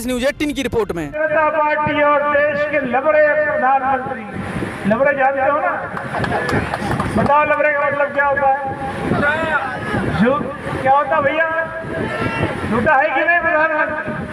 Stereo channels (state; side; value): identical; both; correlation 1.00